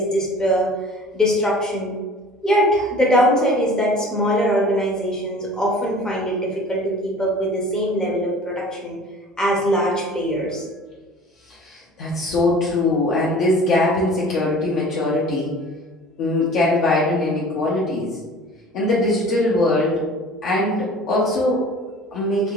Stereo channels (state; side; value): normal; both; correlation 0.45